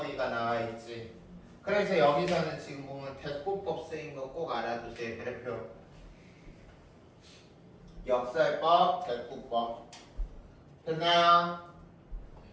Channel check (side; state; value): both; identical; correlation 1.00